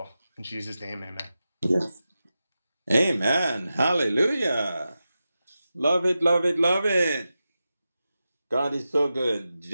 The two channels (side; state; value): both; inverted; correlation -0.92